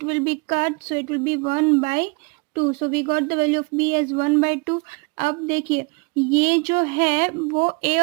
will be cut, so it will be 1/2, so we got the value of b as 1/2। अब देखिए ये जो है वो a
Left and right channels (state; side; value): quieter; left; 29.9 dB